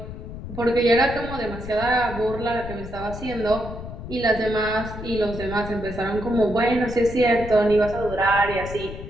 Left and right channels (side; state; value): left; noise; rumble, 10 dB below the sound